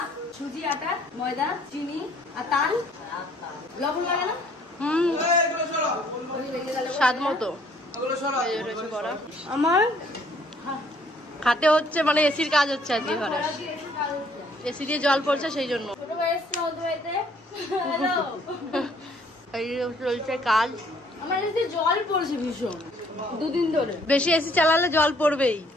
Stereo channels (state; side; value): normal; both; correlation 0.62